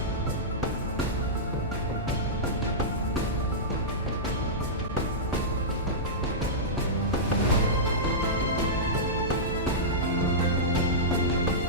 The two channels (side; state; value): both; normal; correlation -0.14